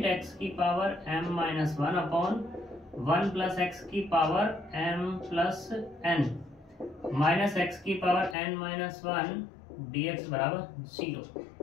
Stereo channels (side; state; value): right; drops out; at 8.3 s